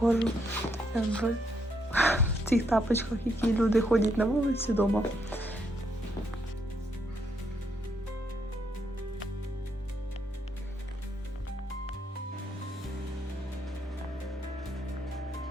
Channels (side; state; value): both; normal; correlation 0.75